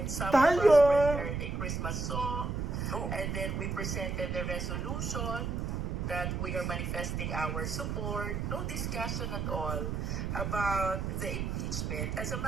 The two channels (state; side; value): noise; right; rumble, 2 dB below the sound